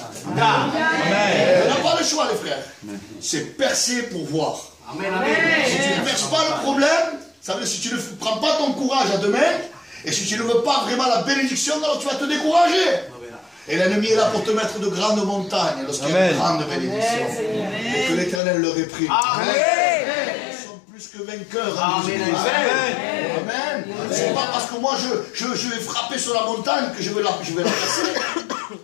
On n'a pas le choix, les frères. C'est percer pour voir. Si tu ne perces pas le problème, ça veut dire si tu ne prends pas ton courage à deux mains, et si tu ne veux pas vraiment la bénédiction, alors tu vas te décourager. Et l'ennemi est là pour te mettre de grandes montagnes lorsqu'il y a une grande bénédiction. Et que l'Éternel leur réprime. Ils sont plus que vainqueurs. Amen. C'est pas parce que moi je vais frapper sur la montagne que je vais la percer.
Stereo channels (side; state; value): right; drops out; at 18.4 s